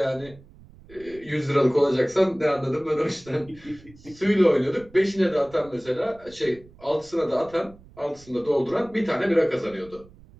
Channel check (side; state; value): right; noise; rumble, 23 dB below the sound